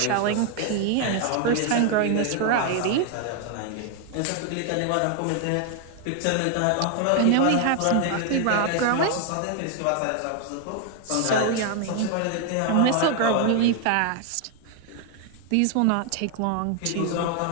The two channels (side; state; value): both; different; correlation 0.00